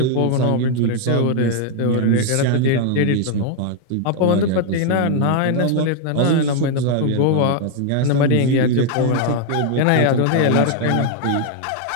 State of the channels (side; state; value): both; different; correlation 0.00